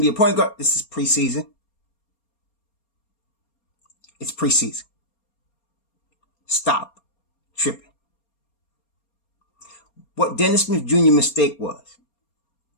be a point guard. This is preseason. It's preseason. Stop tripping. What Dennis Smith Jr. mistake was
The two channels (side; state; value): right; late; 4.3 ms